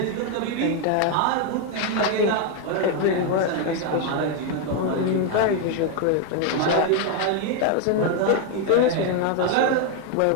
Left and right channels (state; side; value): different; both; correlation 0.01